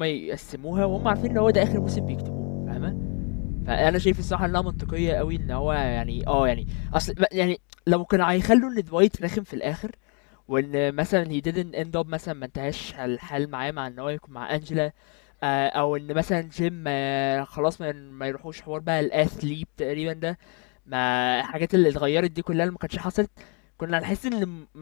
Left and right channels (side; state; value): right; quieter; 35.6 dB